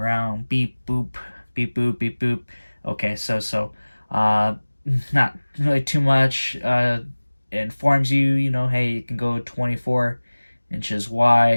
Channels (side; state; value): both; inverted; correlation -1.00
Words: Beep boop, beep boop, beep boop. Okay, so not really too much. It informs you, you know, hey, you can go 24 inches